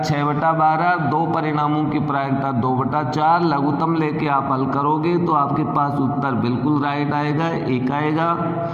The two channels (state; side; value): identical; both; correlation 1.00